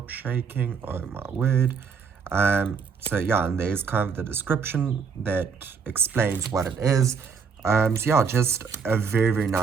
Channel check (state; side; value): quieter; left; 5.9 dB